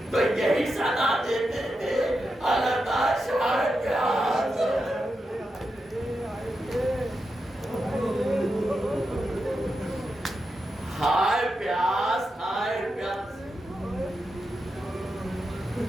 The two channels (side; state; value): both; normal; correlation 0.87